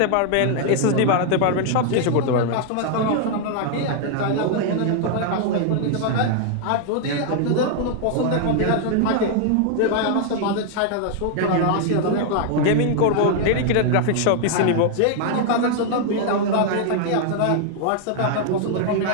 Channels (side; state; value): both; different; correlation 0.00